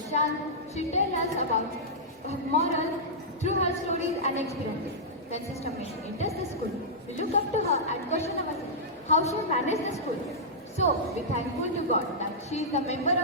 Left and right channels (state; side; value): normal; both; correlation -0.11